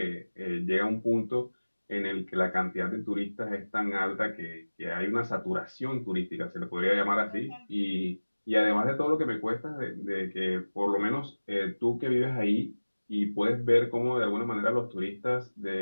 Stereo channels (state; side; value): inverted; both; correlation -1.00